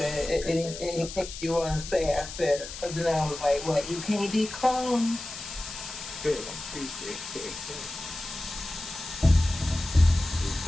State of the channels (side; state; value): left; noise; hiss, 10 dB below the sound